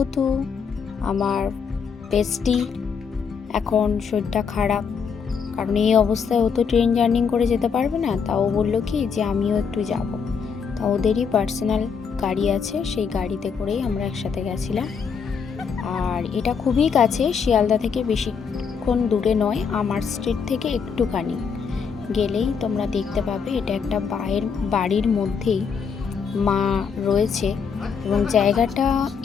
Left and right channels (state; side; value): quieter; right; 6.2 dB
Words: আমার বেস্টি এখন শরীরটা খারাপ, কারণ এই অবস্থায় ও তো ট্রেন জার্নি করে যেতে পারবে না, তাও বললো কি যে আমিও একটু যাব। তা ওদেরই পার্সোনাল গাড়ি আছে, সেই গাড়িতে করেই আমরা একসাথে গেছিলাম। আর এটা খুবই কাছে, শিয়ালদা থেকে বেশিক্ষণ দূরে নয়, আমার স্ট্রিট থেকে একটুখানি গেলেই তোমরা দেখতে পাবে। এটা একটা বাড়ির মধ্যেই মা রয়েছে এবং জায়গাটা